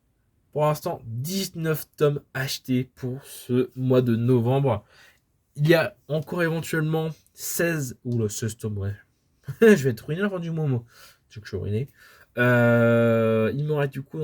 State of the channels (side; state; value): both; identical; correlation 1.00